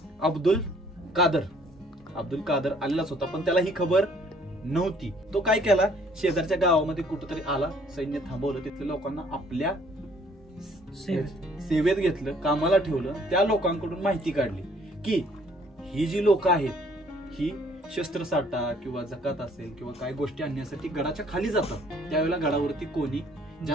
अब्दुल कादर आलेलाच होता, पण त्याला ही खबर नव्हती. तो काय केला, शेजारच्या गावामध्ये कुठेतरी आला, सैन्य थांबवलं, तिथल्या लोकांना आपल्या सेवेत घेतलं, कामाला ठेवलं. त्या लोकांकडून माहिती काढली की ही जी लोक आहेत ही शस्त्रसाठा किंवा जकात असेल किंवा काय गोष्टी आणण्यासाठी गडाच्या खाली जातात. त्यावेळेला गडावरती कोणी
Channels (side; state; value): both; normal; correlation 0.60